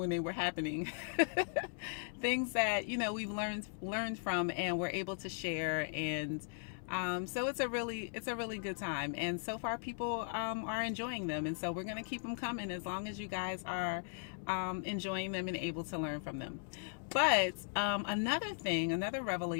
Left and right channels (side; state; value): right; silent; digital silence